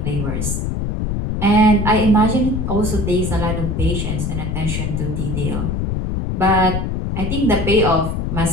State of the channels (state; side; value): noise; left; rumble, 1 dB below the sound